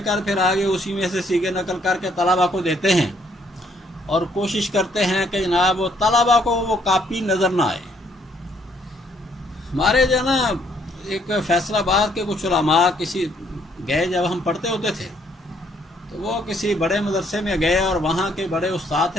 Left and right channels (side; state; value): both; normal; correlation 0.67